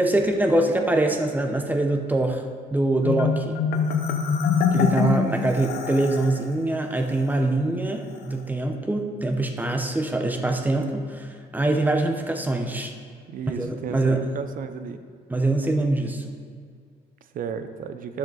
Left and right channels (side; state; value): both; normal; correlation 0.74